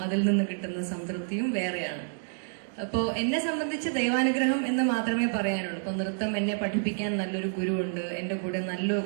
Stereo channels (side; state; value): left; silent; digital silence